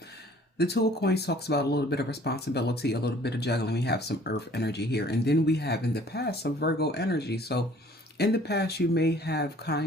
The Two of Coins talks about a little bit of responsibility, a little bit of juggling. We have some earth energy here. And then we have in the past some Virgo energy. So in the past, you may have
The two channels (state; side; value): normal; both; correlation 0.54